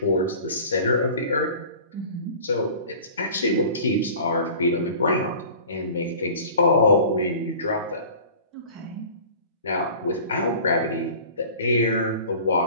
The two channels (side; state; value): both; inverted; correlation -0.43